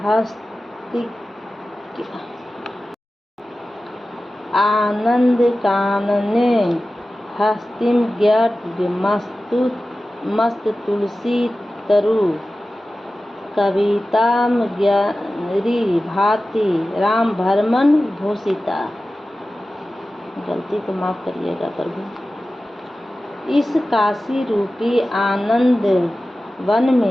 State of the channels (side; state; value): both; normal; correlation 0.95